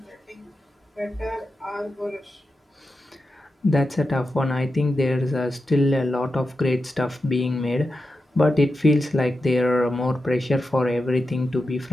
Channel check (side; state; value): both; normal; correlation 0.90